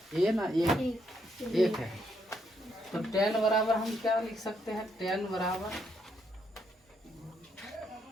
ए ना, एक है। तो tan बराबर हम क्या लिख सकते हैं? tan बराबर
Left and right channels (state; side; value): normal; both; correlation 0.75